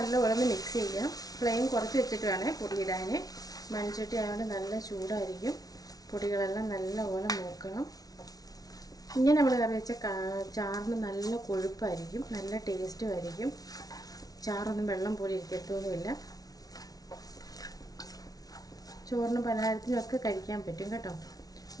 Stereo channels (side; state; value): right; late; 0.18 ms